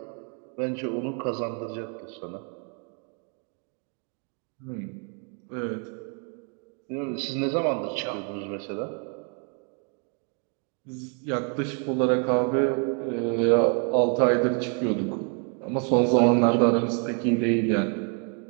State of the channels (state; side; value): quieter; left; 39.7 dB